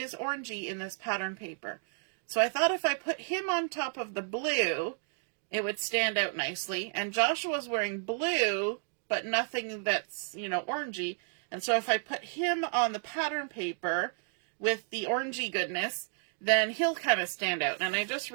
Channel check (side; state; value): left; silent; 56 dB below the other